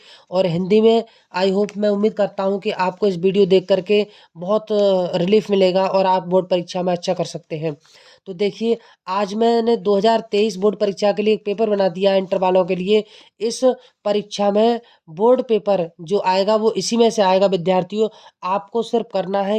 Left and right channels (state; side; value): identical; both; correlation 1.00